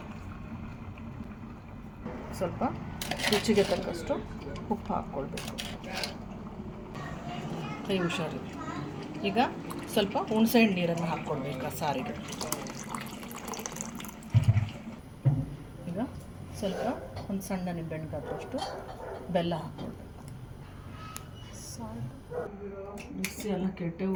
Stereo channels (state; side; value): identical; both; correlation 1.00